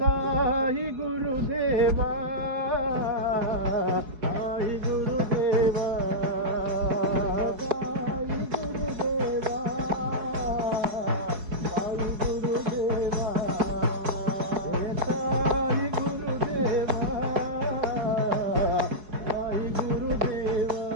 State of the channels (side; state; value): left; late; 4.7 ms